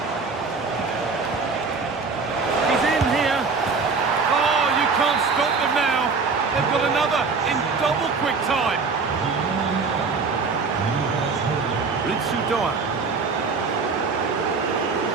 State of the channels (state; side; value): quieter; left; 4.6 dB